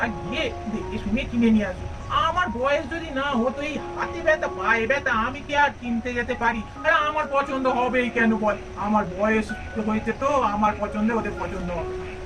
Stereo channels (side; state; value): both; identical; correlation 1.00